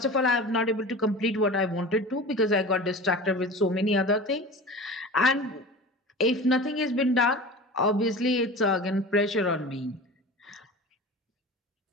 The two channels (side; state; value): both; normal; correlation 0.35